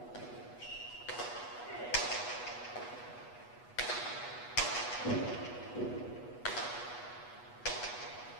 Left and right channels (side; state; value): right; late; 8.2 ms